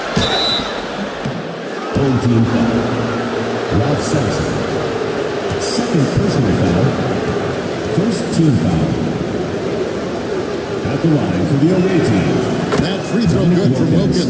Home team foul. Ralph Sampson. Second personal foul. First team foul. At the line for the away team. That free throw good from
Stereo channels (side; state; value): both; identical; correlation 1.00